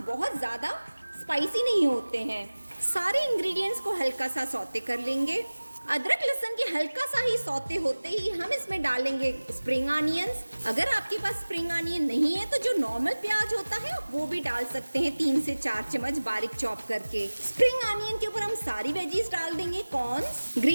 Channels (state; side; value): inverted; both; correlation -1.00